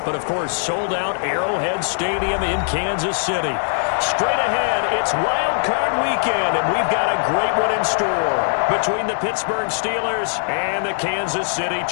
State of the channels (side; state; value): right; silent; digital silence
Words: of course, sold out Arrowhead Stadium in Kansas City. Straight ahead, it's Wild Card Weekend, and we've got a great one in store between the Pittsburgh Steelers and the Kansas City